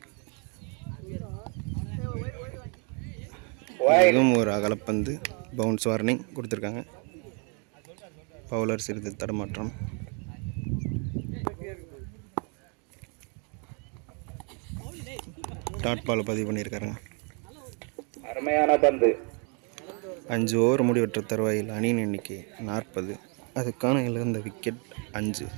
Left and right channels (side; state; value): left; quieter; 36.5 dB